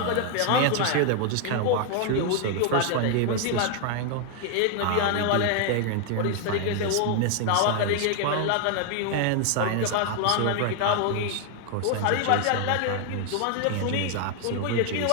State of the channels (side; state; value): both; different; correlation 0.00